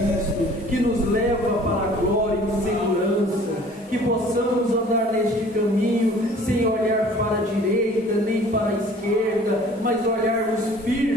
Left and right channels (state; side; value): normal; both; correlation 0.50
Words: que nos leva para a glória e segurança, que possamos andar neste caminho sem olhar para a direita nem para a esquerda, mas olharmos